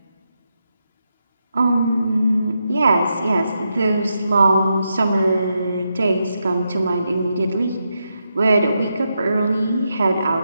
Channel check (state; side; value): inverted; both; correlation -0.84